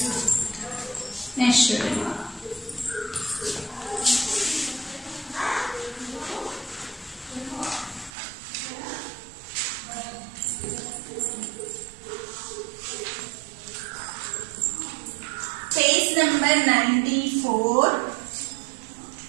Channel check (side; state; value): left; drops out; at 8.1 s